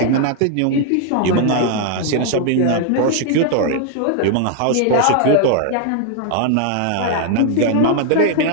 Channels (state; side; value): different; both; correlation 0.00